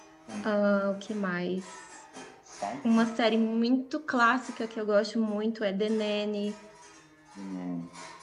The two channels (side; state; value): both; identical; correlation 1.00